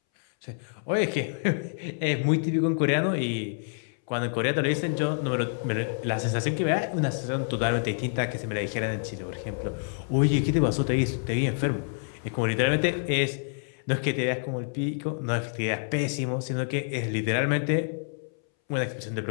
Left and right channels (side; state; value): right; silent; 60 dB below the other